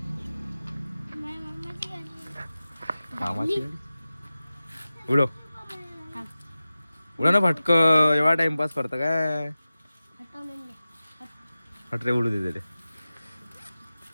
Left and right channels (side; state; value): both; inverted; correlation -0.96